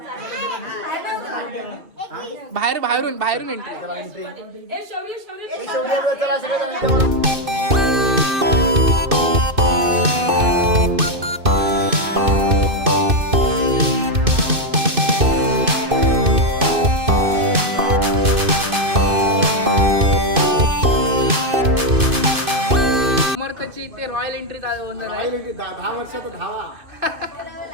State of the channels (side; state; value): left; late; 2.6 ms